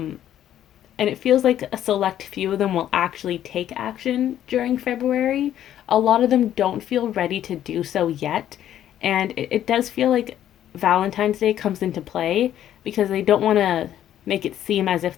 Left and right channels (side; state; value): right; quieter; 11.3 dB